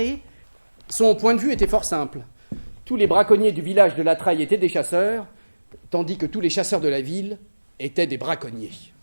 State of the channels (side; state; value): both; inverted; correlation -1.00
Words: Son point de vue était fort simple. Tous les braconniers du village de La Traille étaient des chasseurs, tandis que tous les chasseurs de la ville étaient des braconniers.